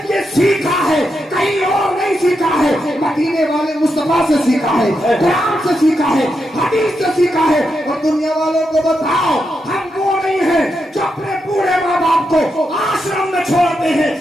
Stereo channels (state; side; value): normal; both; correlation 0.84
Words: یہ سیکھا ہے کہیں اور نہیں سیکھا ہے، مدینے والے مصطفیٰ سے سیکھا ہے، قرآن سے سیکھا ہے، حدیث سے سیکھا ہے. اور دنیا والوں کو بتاؤ، ہم وہ نہیں ہیں جو اپنے بوڑھے ماں باپ کو آشرم میں چھوڑتے ہیں.